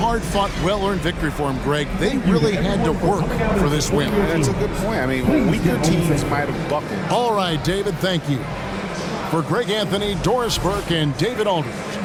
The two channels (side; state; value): both; identical; correlation 1.00